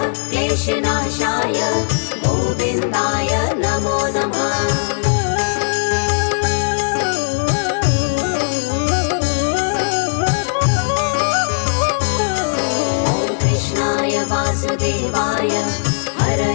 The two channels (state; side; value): silent; right; 66 dB below the other